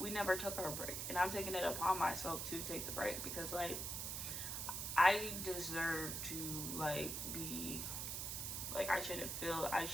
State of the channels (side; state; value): right; noise; hiss, 3 dB below the sound